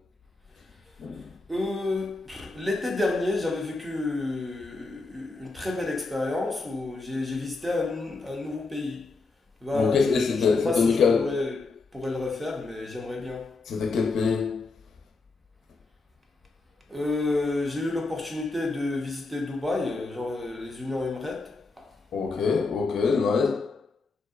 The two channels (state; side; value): quieter; right; 3.7 dB